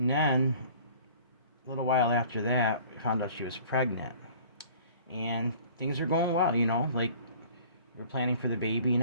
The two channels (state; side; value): inverted; both; correlation -0.49